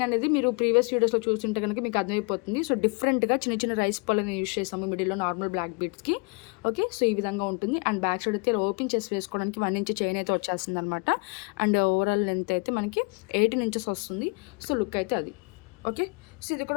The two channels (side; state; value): right; quieter; 32.2 dB